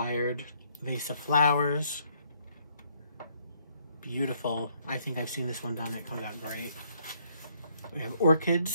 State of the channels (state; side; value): inverted; both; correlation -0.68